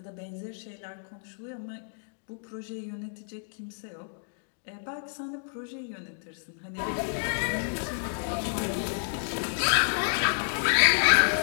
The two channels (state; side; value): silent; right; digital silence